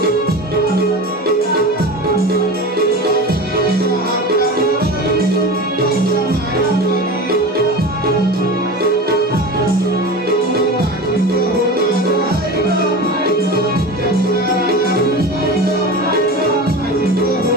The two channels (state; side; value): normal; both; correlation 0.30